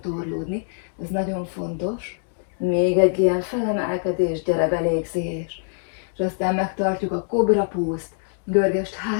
Ez nagyon fontos. Még egy ilyen felemelkedés, gyere, belégzés. És aztán megtartjuk a kobra pózt, görgesd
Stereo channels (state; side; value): silent; right; digital silence